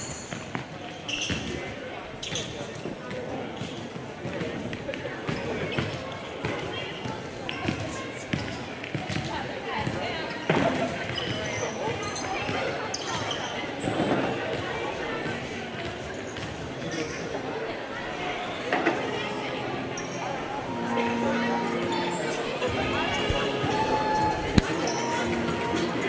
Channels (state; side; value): identical; both; correlation 1.00